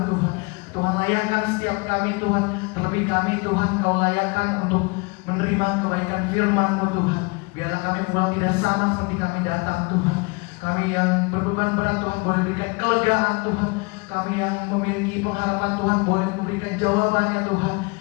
Tuhan. Tuhan layakkan setiap kami Tuhan. Terlebih kami Tuhan, Kau layakkan untuk menerima kebaikan firman-Mu Tuhan. Biarlah kami pulang tidak sama seperti kami datang Tuhan. Kami yang berbeban berat Tuhan boleh berikan kelegaan Tuhan. Kami yang memiliki pengharapan Tuhan boleh memberikan jawabannya Tuhan.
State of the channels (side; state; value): right; quieter; 28.9 dB